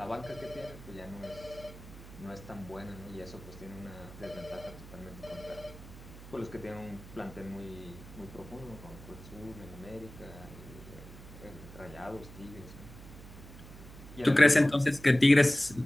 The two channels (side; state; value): right; noise; hum, 16 dB below the sound